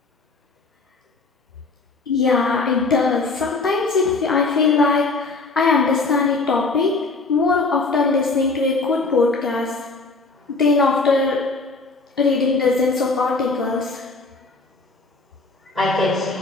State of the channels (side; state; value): right; quieter; 3.8 dB